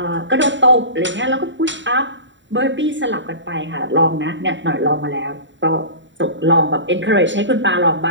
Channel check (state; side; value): late; left; 0.54 ms